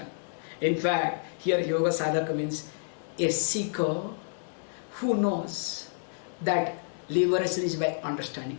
In fact, here yoga sadhaka means a seeker who knows that liberation is by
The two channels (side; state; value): right; silent; digital silence